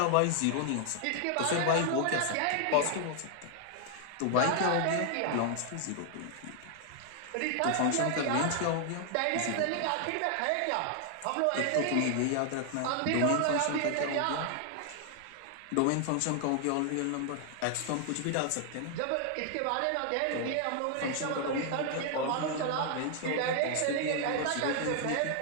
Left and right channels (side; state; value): both; different; correlation 0.00